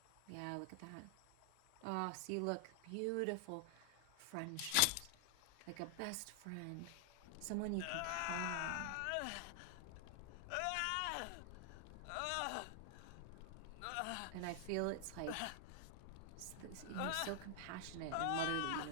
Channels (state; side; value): different; both; correlation 0.00